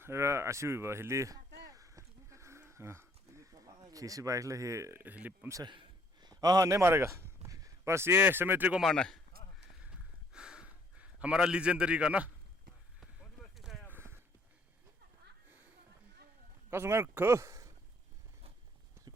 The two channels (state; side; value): normal; both; correlation 0.63